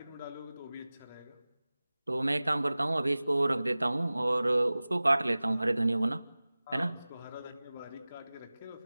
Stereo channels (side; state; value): both; inverted; correlation -0.98